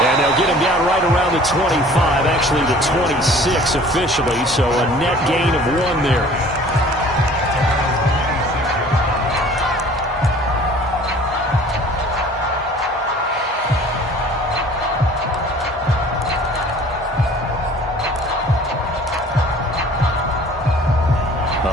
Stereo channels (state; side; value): normal; both; correlation 0.49